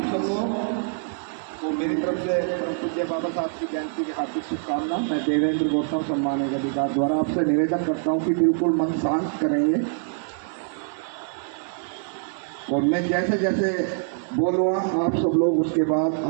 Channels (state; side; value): silent; left; digital silence